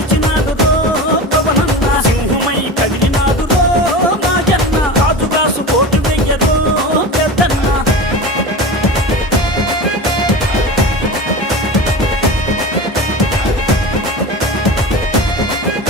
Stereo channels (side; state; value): both; normal; correlation 0.29